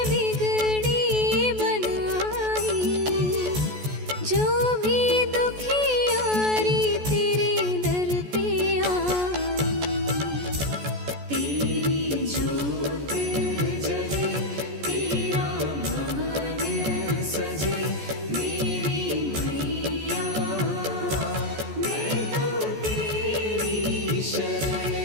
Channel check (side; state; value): left; late; 14 ms